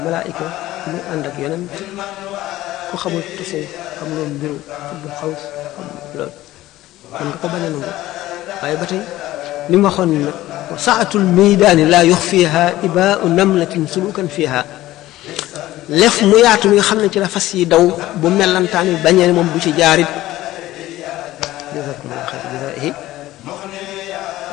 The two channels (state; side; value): quieter; right; 15.8 dB